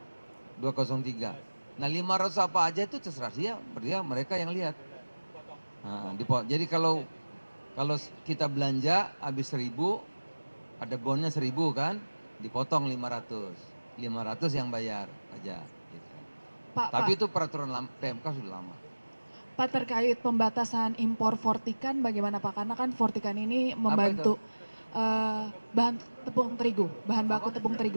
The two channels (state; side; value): inverted; both; correlation -1.00